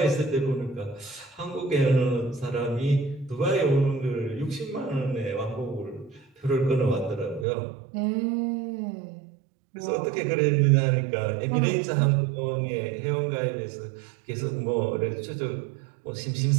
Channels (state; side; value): drops out; left; at 7.5 s